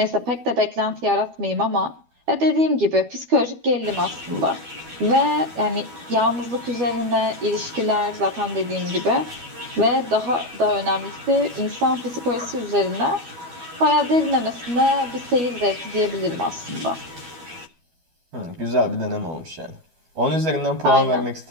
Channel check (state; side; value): late; left; 12 ms